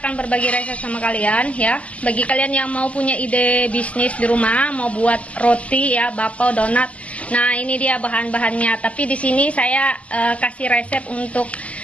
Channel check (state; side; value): late; right; 0.066 ms